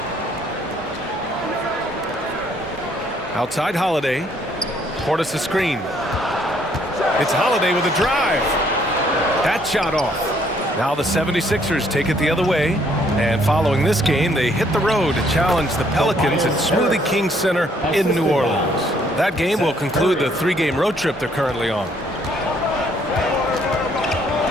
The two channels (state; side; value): normal; both; correlation 0.66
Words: Outside Holiday. Portis a screen. It's Holiday with a drive. That shot off. Now the 76ers take it the other way. And following this game, they hit the road to challenge the Pelicans at Smoothie King Center in New Orleans. That game will conclude the 3-game road trip they're currently on.